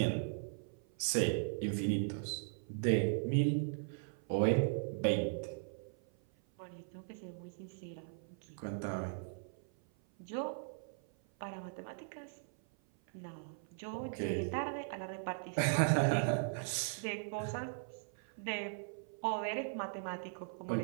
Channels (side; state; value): left; silent; 52 dB below the other